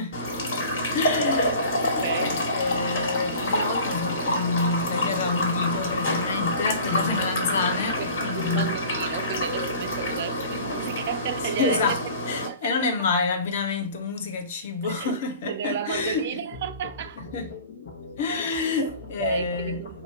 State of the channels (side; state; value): both; inverted; correlation -0.43